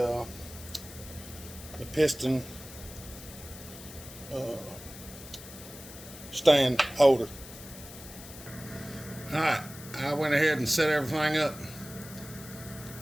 piston stand holder. Alright, I went ahead and set everything up,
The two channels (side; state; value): left; noise; hiss, 15 dB below the sound